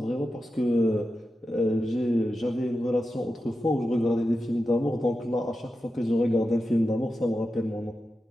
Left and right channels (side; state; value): both; normal; correlation 0.91